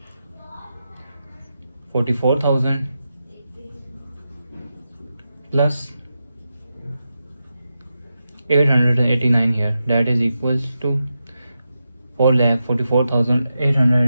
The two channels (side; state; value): both; inverted; correlation -0.89